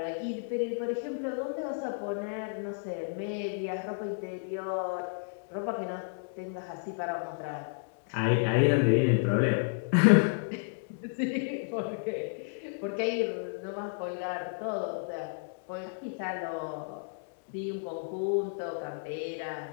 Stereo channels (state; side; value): silent; right; digital silence